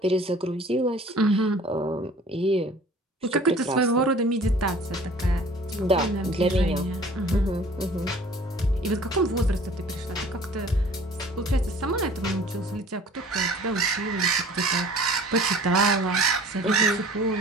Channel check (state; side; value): normal; both; correlation 0.48